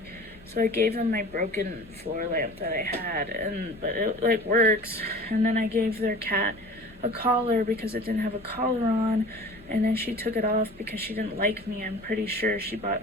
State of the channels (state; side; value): normal; both; correlation 0.41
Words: so I gave them my broken floor lamp that I had, but it like works. And then I gave their cat a collar because it didn't have a collar on, and then she took it off because she didn't like me. I'm pretty sure she